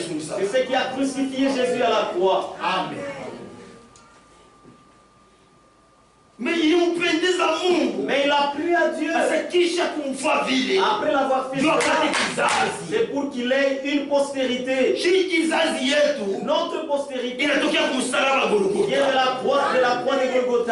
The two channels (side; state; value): both; identical; correlation 1.00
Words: ce qui a crucifié Jésus à la croix. Amen. Mais il a plu à Dieu. Après l'avoir fait, c'est pour qu'il ait une postérité. Notre postérité vient de la croix de